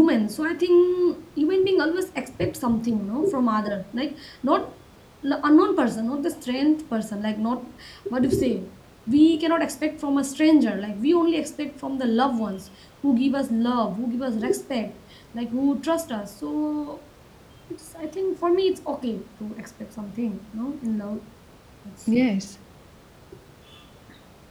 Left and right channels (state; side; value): identical; both; correlation 1.00